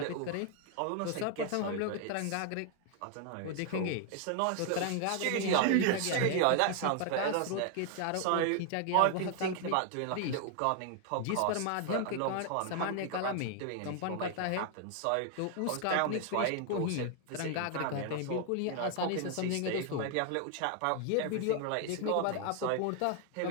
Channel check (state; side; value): different; both; correlation 0.00